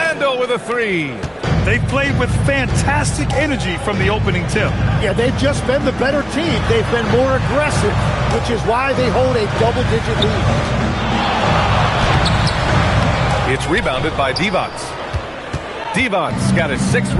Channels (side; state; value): both; identical; correlation 1.00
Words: with a 3. They've played with fantastic energy from the opening tip. Yeah, they've just been the better team. They've been more aggressive, which is why they hold a double-digit lead. It's rebounded by Divac. Divac's got his 6th